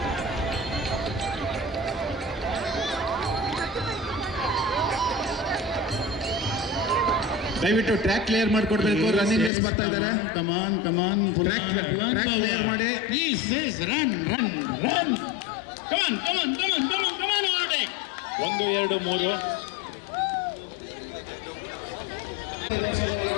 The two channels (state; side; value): drops out; right; at 9.5 s